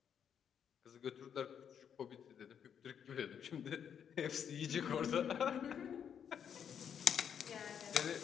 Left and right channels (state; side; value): quieter; right; 8.1 dB